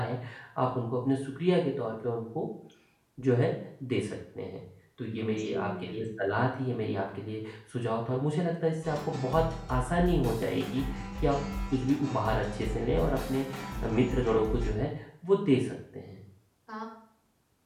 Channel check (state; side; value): identical; both; correlation 1.00